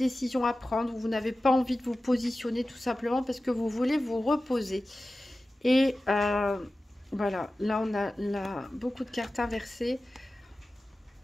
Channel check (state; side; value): normal; both; correlation 0.95